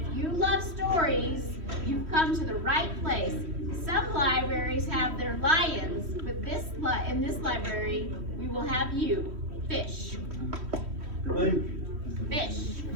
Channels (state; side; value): late; left; 3.1 ms